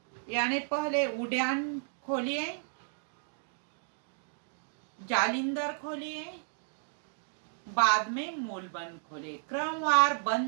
यानी पहले उद्यान खोलिए, जालिंदर खोलिए, बाद में मूल बंद खोलिए। क्रमवार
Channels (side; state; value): left; silent; digital silence